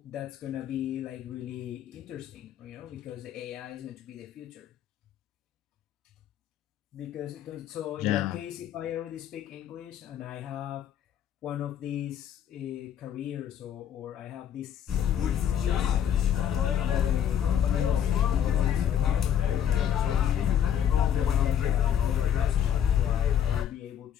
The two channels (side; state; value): right; quieter; 9.5 dB